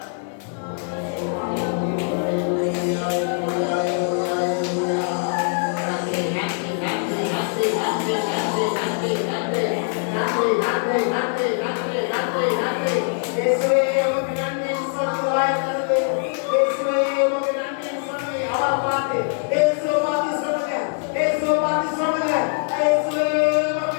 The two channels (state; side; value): silent; right; 59 dB below the other